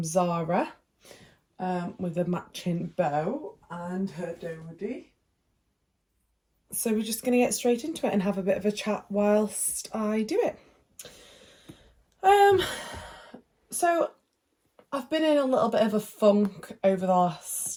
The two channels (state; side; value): identical; both; correlation 1.00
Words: Zara with a matching bow and her dodie. So we're just going to get straight into it and have a bit of a chat whilst I do it. So I've been in a little bit of a funk over the